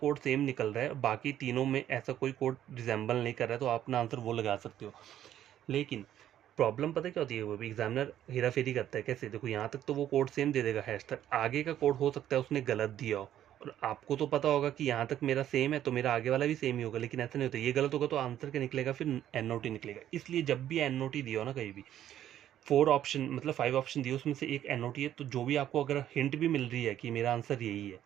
सेम निकल रहा है, बाकी तीनों में ऐसा कोई कोड रिजेंबल नहीं कर रहा है, तो आप अपना आंसर वो लगा सकते हो। लेकिन प्रॉब्लम पता क्या होती है, वो भी एग्जामिनर हेरा फेरी करता है। कैसे, देखो यहाँ तक तो वो कोड सेम दे देगा हैश तक, आगे का कोड हो सकता है उसने गलत दिया हो, और आपको तो पता होगा कि यहाँ तक मेरा सेम है तो मेरा आगे वाला भी सेम ही होगा, लेकिन ऐसा नहीं होता। ये गलत होगा तो आंसर क्या निकलेगा, फिर एन ओ टी निकलेगा। इसलिए जब भी एन ओ टी दिया हो ना कहीं भी, 4 ऑप्शन मतलब 5 ऑप्शन दिए, उसमें से एक एन ओ टी है, तो जो भी आपको अगर हिंट भी मिल रही है कि मेरा आंसर यही है,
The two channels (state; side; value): quieter; left; 11.4 dB